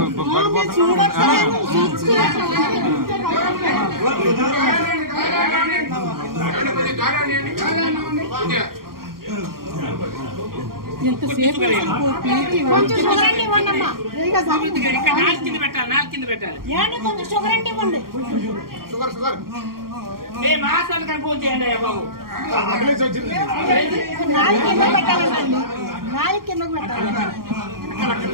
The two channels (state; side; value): late; left; 0.92 ms